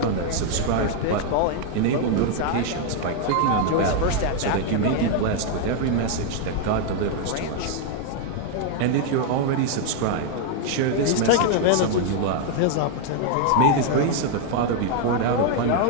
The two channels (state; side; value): different; both; correlation 0.00